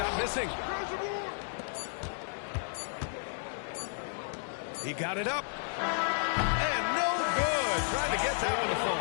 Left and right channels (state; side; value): silent; right; digital silence